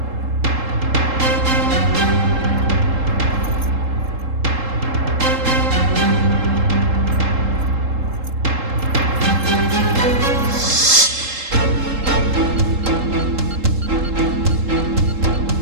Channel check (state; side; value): late; left; 3.7 ms